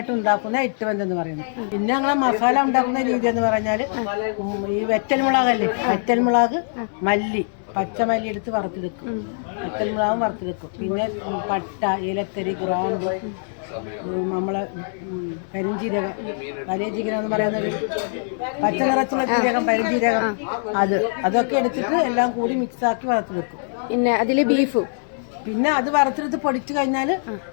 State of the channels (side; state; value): right; silent; digital silence